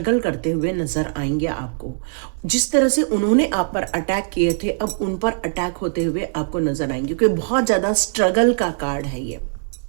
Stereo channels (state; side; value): silent; left; digital silence